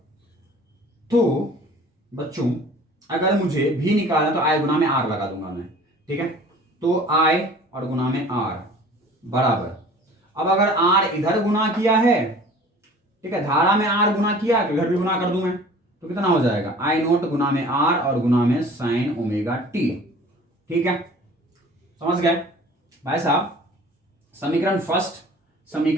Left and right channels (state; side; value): normal; both; correlation 0.47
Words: तो बच्चों अगर मुझे भी निकालना तो आई गुना में आर लगा दूंगा मैं। ठीक है, तो आई और गुना में आर बराबर, अब अगर आर इधर गुना किया है, ठीक है, धारा में आर गुना किया तो इधर भी गुना कर दूं मैं, तो कितना हो जाएगा, आई नोट गुना में आर और गुना में साइन ओमेगा टी। ठीक है, समझ गए भाई साहब। समीकरण फर्स्ट,